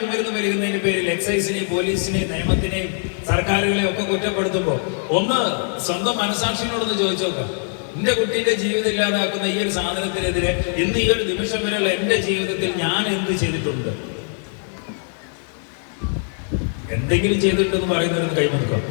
വരുന്നതിന്റെ പേരിൽ എക്സൈസിനെയും പോലീസിനെയും നിയമത്തിനെയും സർക്കാരുകളെയും ഒക്കെ കുറ്റപ്പെടുത്തുമ്പോൾ ഒന്ന് സ്വന്തം മനസാക്ഷിയോടൊന്ന് ചോദിച്ചു നോക്കാം. എന്റെ കുട്ടീന്റെ ജീവിതം ഇല്ലാതാക്കുന്ന ഈ ഒരു സാധനത്തിനെതിരെ ഇന്ന് ഈ ഒരു നിമിഷം വരെയുള്ള എന്റെ ജീവിതത്തിൽ ഞാൻ എന്ത് ചെയ്തിട്ടുണ്ട്? എന്തെങ്കിലും ചെയ്തിട്ടുണ്ടെന്ന് പറയുന്നവർക്ക് കൈമുറുക്കാം.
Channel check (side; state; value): right; silent; 60 dB below the other